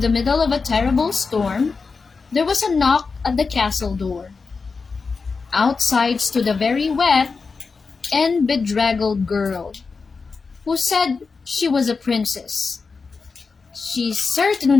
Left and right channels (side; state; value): right; quieter; 4.7 dB